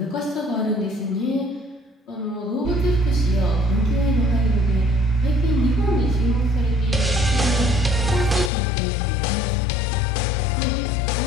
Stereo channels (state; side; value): drops out; right; at 8.5 s